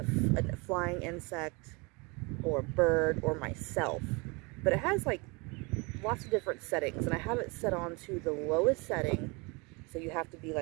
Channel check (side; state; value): left; quieter; 28.5 dB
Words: flying insect or a bird or myself. But it has like lots of different settings, and I have it set on to the lowest setting, so you have to be